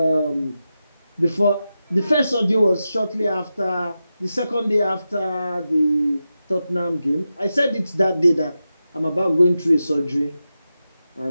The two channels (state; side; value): inverted; both; correlation -0.91